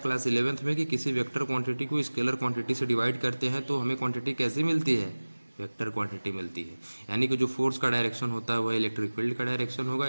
11th में कि किसी वेक्टर क्वांटिटी को स्केलर क्वांटिटी से डिवाइड करते हैं तो हमें क्वांटिटी कैसी मिलती है, वेक्टर क्वांटिटी मिलती है। यानी कि जो फोर्स का डायरेक्शन होता है वह इलेक्ट्रिक फील्ड का डायरेक्शन होगा,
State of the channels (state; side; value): inverted; both; correlation -1.00